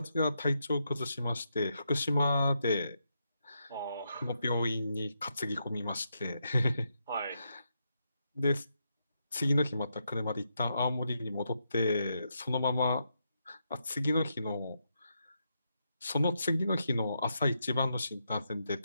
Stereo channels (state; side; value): inverted; both; correlation -0.82